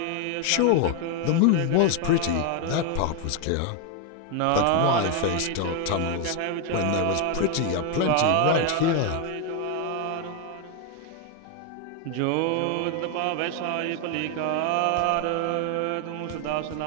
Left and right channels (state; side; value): different; both; correlation 0.01